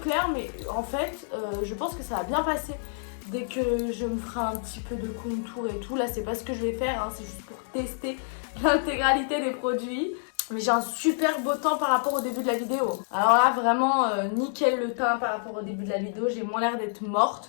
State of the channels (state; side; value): silent; right; digital silence